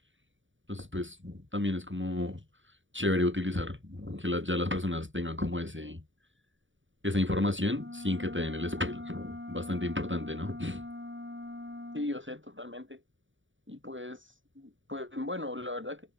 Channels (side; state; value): left; late; 0.56 ms